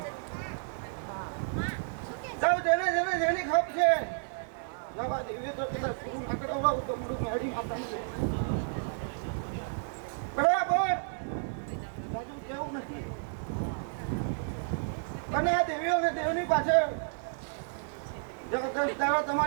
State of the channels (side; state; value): left; silent; digital silence